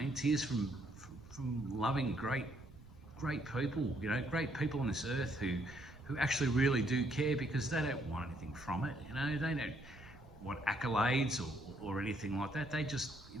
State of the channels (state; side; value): noise; right; rumble, 22 dB below the sound